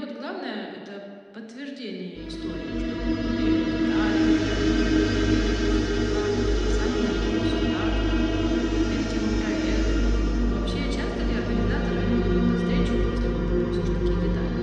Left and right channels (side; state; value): both; identical; correlation 1.00